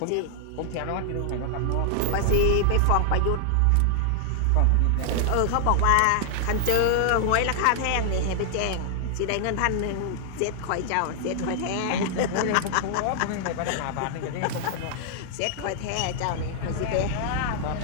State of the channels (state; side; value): different; both; correlation 0.00